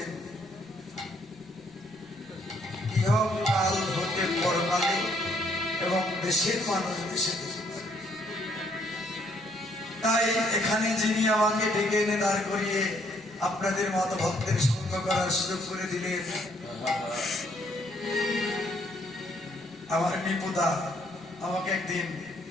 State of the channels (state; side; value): noise; right; rumble, 29 dB below the sound